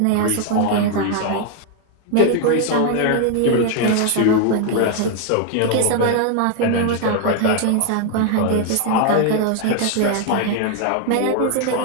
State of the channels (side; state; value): both; different; correlation 0.00